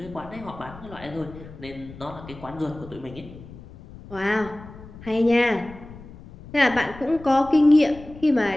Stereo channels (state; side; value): noise; left; rumble, 17 dB below the sound